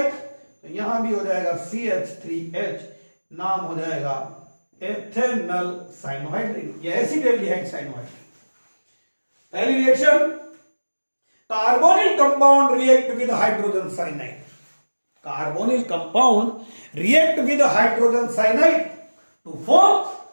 तो यहां भी हो जाएगा CH3H, नाम हो जाएगा एथेनल साइनोहाइड्रिन या एसिडल्डिहाइड साइनोहाइड्रिन। पहली reaction, carbonyl compound react with hydrogen cyanide, carbonyl compound react with hydrogen cyanide to form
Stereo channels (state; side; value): inverted; both; correlation -1.00